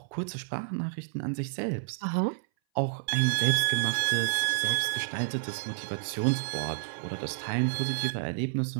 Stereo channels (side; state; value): left; silent; 58 dB below the other